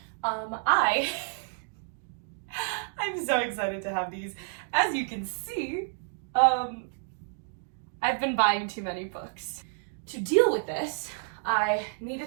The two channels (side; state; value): left; silent; digital silence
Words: I'm so excited to have these. As you can see, I've been buying too many books. To deal with this, I